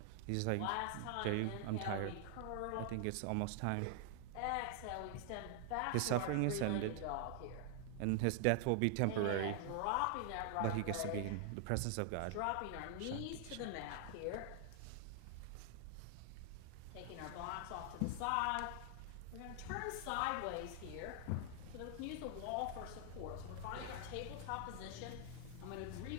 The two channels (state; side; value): different; both; correlation 0.00